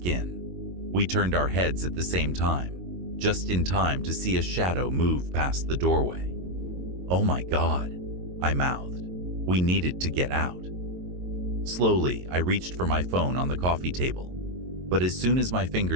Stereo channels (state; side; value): late; left; 22 ms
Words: We turned our heads at the same time, just in time to see a shadow move past the doorway. "Oh my God," I mouthed. We needed to get out. Slowly, I reached for my phone on the coffee table, but as soon as my